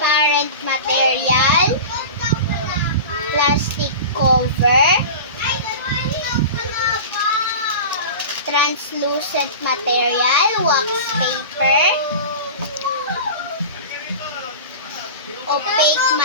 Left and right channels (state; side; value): inverted; both; correlation -0.32